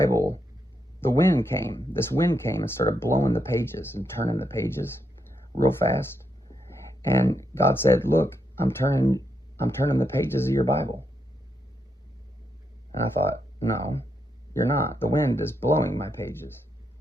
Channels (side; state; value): both; normal; correlation 0.81